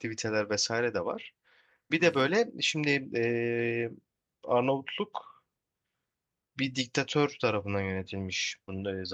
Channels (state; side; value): identical; both; correlation 1.00